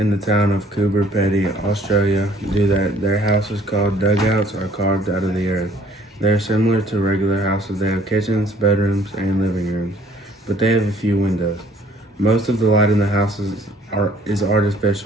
the town of Coober Pedy, Australia, do that. Their houses, called dugouts, are carved out of the earth. They are similar to regular houses. They have kitchens, bedrooms, and living rooms, but they have a few windows. Most of the light in the houses is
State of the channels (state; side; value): normal; both; correlation 0.58